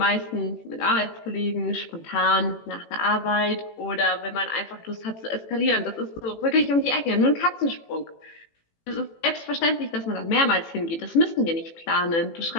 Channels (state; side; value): late; right; 18 ms